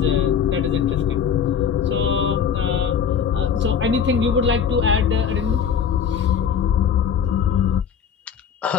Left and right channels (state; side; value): quieter; right; 7.5 dB